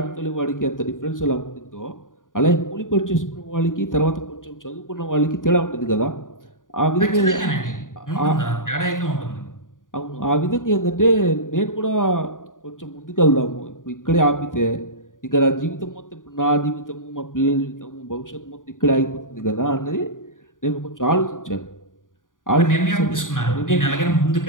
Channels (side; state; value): right; late; 0.89 ms